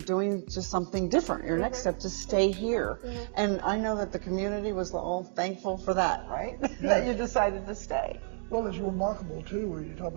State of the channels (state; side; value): silent; left; 57 dB below the other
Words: just something different. Your next step to stay here. And I know that the community was all thankful for that, right? That you decided to stay. Well, it's remarkable too, when you talk